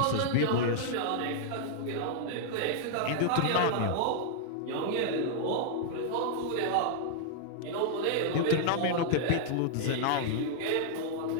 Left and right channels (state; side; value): different; both; correlation -0.01